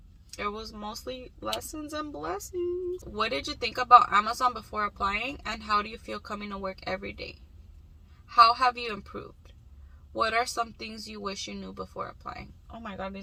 It was mostly lessons and blessings. What did you think about Amazon before applying? And how do you feel coming to work every day? How have you improved? What are some things you wish you knew before applying? Oh my god,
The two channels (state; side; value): identical; both; correlation 1.00